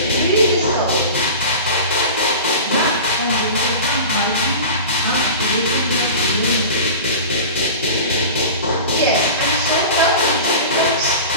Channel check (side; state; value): both; inverted; correlation -0.33